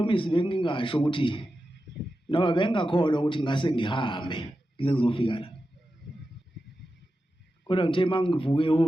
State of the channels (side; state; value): both; normal; correlation 0.91